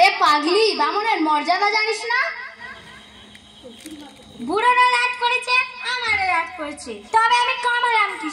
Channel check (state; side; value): identical; both; correlation 1.00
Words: পাগলি, বামনের মর্যাদা জানিস না? বুড়োরা রাগ করেছে, আমারও রাগ করেছে, তবে আমি কামড়াম